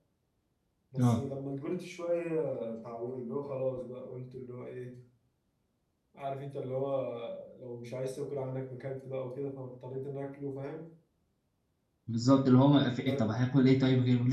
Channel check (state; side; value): identical; both; correlation 1.00